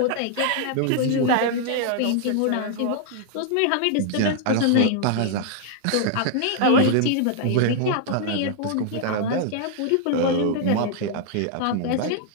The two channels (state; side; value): different; both; correlation -0.01